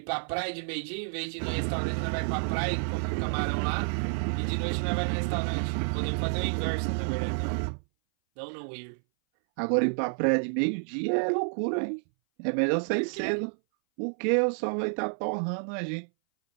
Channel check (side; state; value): left; silent; 58 dB below the other